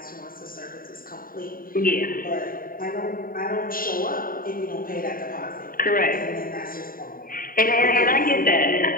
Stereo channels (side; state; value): right; late; 0.41 ms